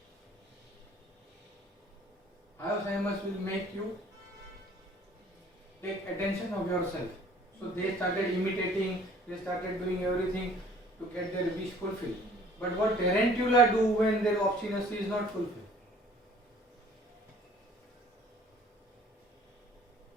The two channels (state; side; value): normal; both; correlation 0.54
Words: Hyoscyamus will make you take attention of yourself. So they started imitating, they started doing everything to get their wish fulfilled. But what tarantula do when their obstinacy is not fulfilled?